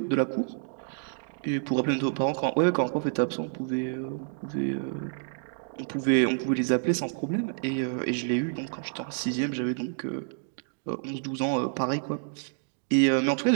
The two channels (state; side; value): silent; left; digital silence